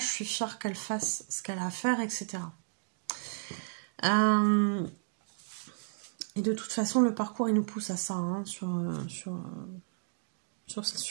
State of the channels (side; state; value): left; silent; digital silence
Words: suis fière qu'elle fasse ce qu'elle a à faire, etc. Et de toute façon, le parcours, il nous pousse à ça, hein, sur